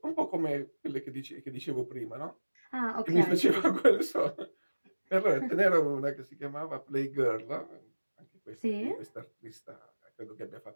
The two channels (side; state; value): both; inverted; correlation -1.00